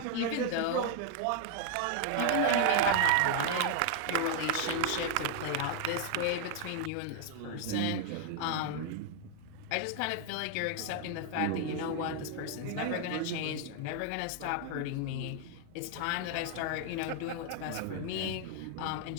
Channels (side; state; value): both; different; correlation 0.00